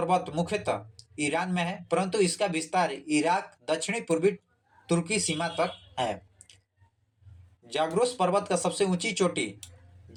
मुख्यतः ईरान में है, परंतु इसका विस्तार इराक दक्षिणी पूर्वी तुर्की सीमा तक है। जाग्रोस पर्वत का सबसे ऊंची चोटी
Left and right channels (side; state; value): both; identical; correlation 1.00